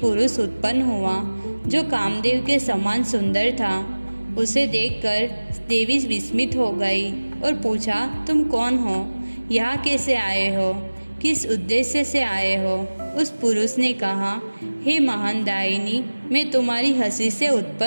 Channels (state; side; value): inverted; both; correlation -1.00